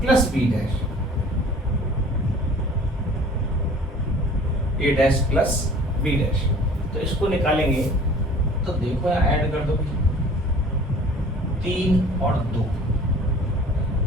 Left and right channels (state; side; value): normal; both; correlation 0.48